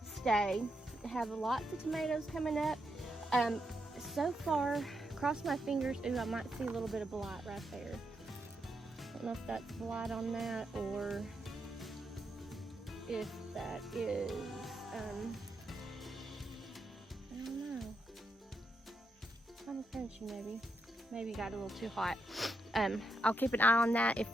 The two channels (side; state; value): both; normal; correlation 0.82